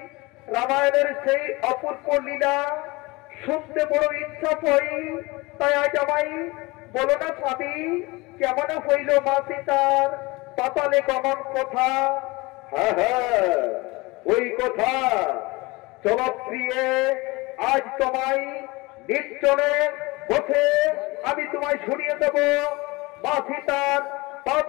রামায়ণের সেই অপূর্ব লীলা শুনতে বড় ইচ্ছা হই, তাই আজ আমায় বলো না স্বামী, কেমন হইল মা সীতার পাতালে গমন কথা? হ্যাঁ হ্যাঁ, ওই কথা চলো প্রিয়ে, আজ তোমায় নির্জনে বসে আমি তোমায় শুনিয়ে দেব মা সীতার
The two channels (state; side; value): quieter; right; 23.4 dB